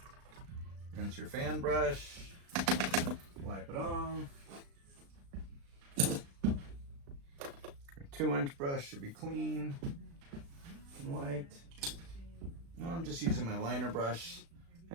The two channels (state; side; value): late; left; 36 ms